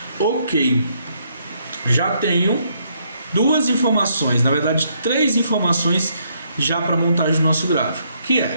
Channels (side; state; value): both; inverted; correlation -0.72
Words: Ok, já tenho duas informações, na verdade 3 informações já para montagem do nosso gráfico, que